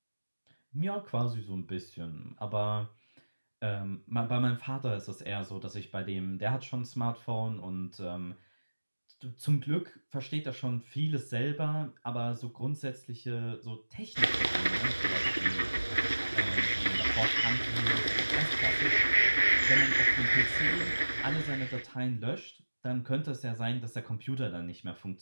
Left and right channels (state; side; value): inverted; both; correlation -1.00